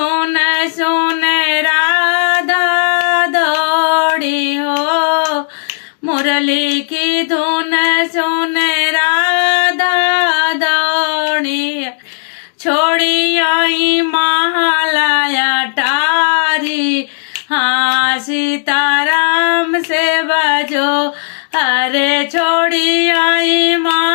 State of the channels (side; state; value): right; silent; digital silence